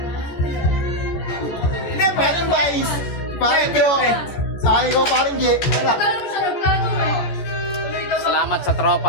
Hindi, Paring Vice. Paring Jo. Sa akin ko, Paring J. Wala. Kala mo sa nagplano mo. Tuloy daw ba? Salamat sa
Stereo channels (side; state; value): right; late; 14 ms